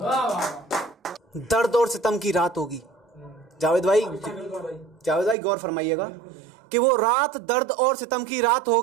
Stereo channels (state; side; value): drops out; left; at 5.4 s